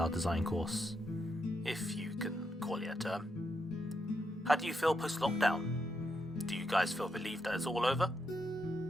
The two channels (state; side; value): normal; both; correlation 0.81